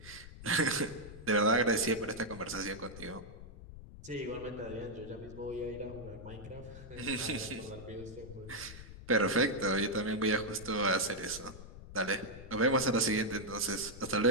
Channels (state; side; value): noise; left; rumble, 14 dB below the sound